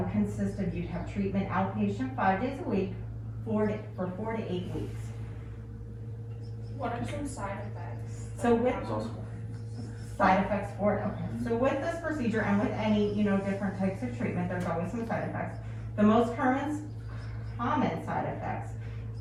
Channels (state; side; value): identical; both; correlation 1.00